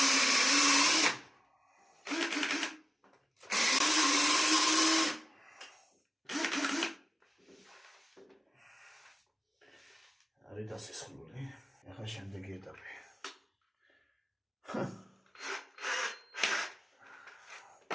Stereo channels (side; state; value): both; normal; correlation 0.97